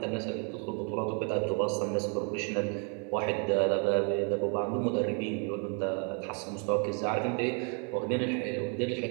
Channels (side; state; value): left; quieter; 37.9 dB